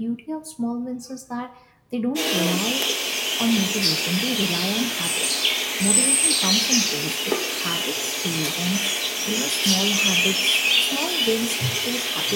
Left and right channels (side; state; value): both; identical; correlation 1.00